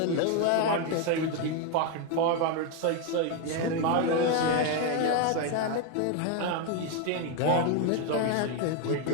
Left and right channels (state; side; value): different; both; correlation 0.01